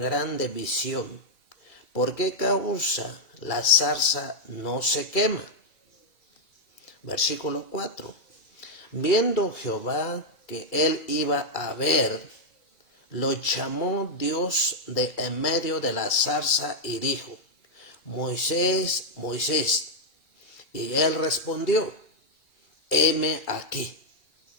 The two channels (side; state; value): right; late; 2.3 ms